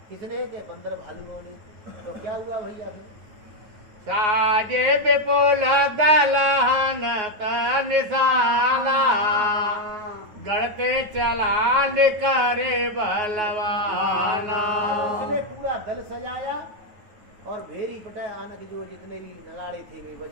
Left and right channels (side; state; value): left; late; 9.5 ms